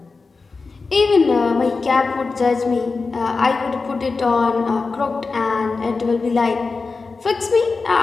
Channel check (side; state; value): right; quieter; 4.2 dB